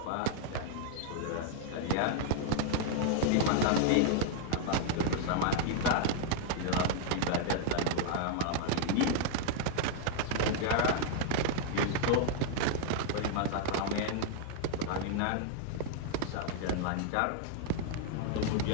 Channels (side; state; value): both; different; correlation 0.00